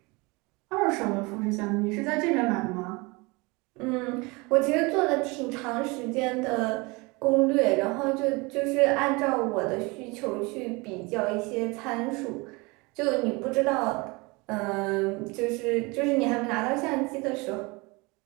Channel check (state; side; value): quieter; left; 26.0 dB